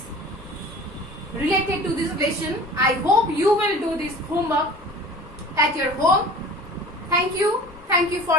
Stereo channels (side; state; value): both; normal; correlation 0.42